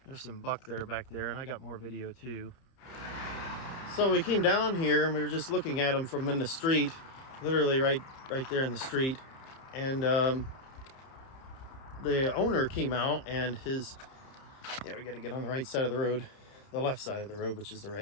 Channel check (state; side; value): late; right; 30 ms